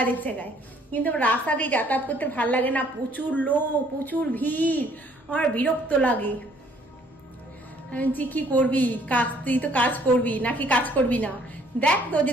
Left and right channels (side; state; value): both; normal; correlation 0.61